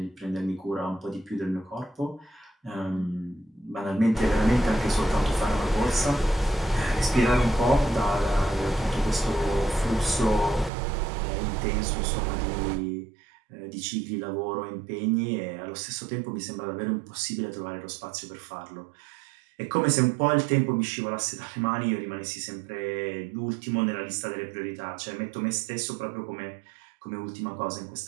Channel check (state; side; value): drops out; left; at 10.7 s